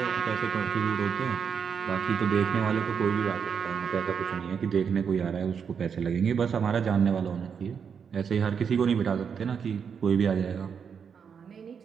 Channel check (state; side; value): quieter; left; 6.8 dB